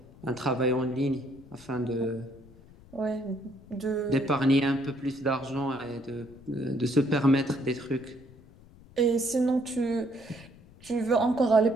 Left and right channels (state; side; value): noise; left; rumble, 23 dB below the sound